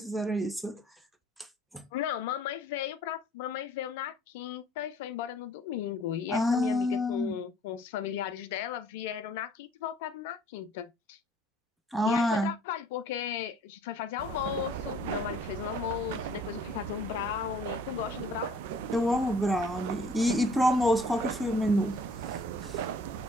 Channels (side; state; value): both; normal; correlation 0.55